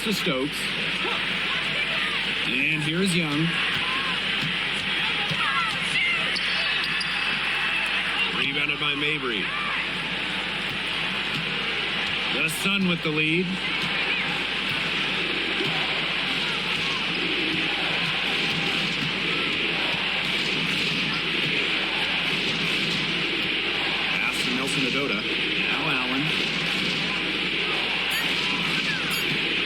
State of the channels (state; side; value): noise; right; hum, 19 dB below the sound